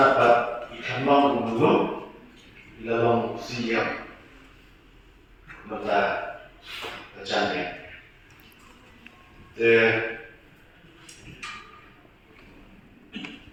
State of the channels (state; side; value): identical; both; correlation 1.00